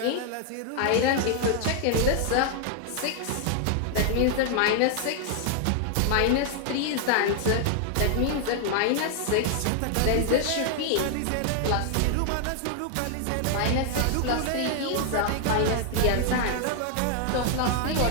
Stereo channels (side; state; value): both; different; correlation 0.00